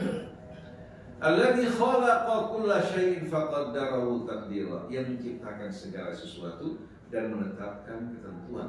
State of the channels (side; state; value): both; identical; correlation 1.00